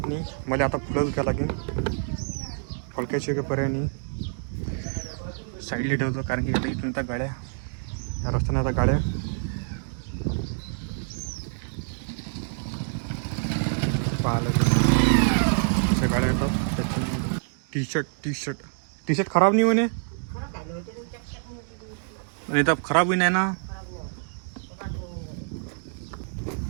नाही मला. आता पुढंच घ्यावं लागेल. फळक्याची काही पर्याय नाही, साईडला ठेवतो. कारण की आता इथून आता गाड्या, या रस्त्याने आता गाड्या पाहायला गाड्या येतात. त्याच्यामुळे टी शर्ट खराब नाही म्हणे. आणि तर खराबही नाही ना.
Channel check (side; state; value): left; silent; digital silence